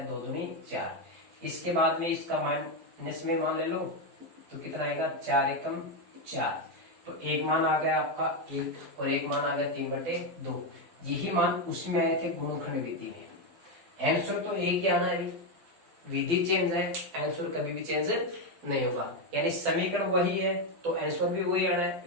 2 दूनी 4। इसके बाद में इसका माइनस में मान ले लो तो कितना आएगा 4 एकम 4। तो एक मान आ गया आपका 1 और एक मान आ गया 3/2। यही मान उसमें आए थे गुणनखंड विधि में। आंसर तो एक ही आना है, विधि चेंज है, आंसर कभी भी चेंज नहीं होगा। यानी समीकरण वही है तो आंसर भी वही आना है।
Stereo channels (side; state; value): left; late; 12 ms